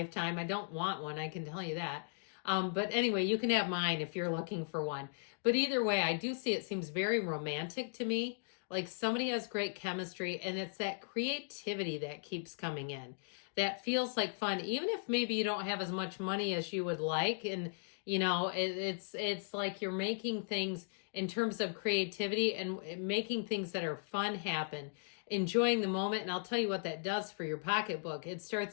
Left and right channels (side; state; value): right; silent; digital silence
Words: I don't want one, I can tell you that. But anyway, you can have mine if you're looking for one. But either way, I do see it seems very romantic to me. Like somebody has great chemistry, and it's that creativity that keeps coming in. That feels like fun, even if maybe you don't have as much money as you would like. And it's like you're making things in terms of creativity and making things that are fun happen, enjoying the moment. And I'll tell you what that does for your pocketbook. It